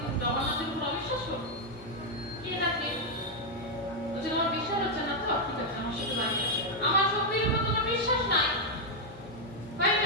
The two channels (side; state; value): both; normal; correlation 0.00